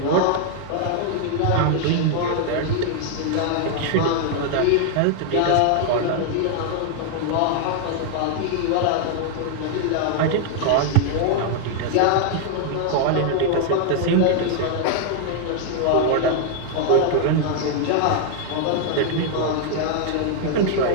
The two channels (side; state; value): both; different; correlation 0.00